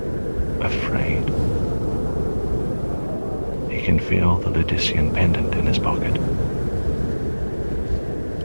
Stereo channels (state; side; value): inverted; both; correlation -1.00